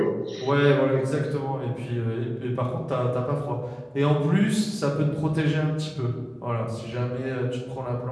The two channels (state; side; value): identical; both; correlation 1.00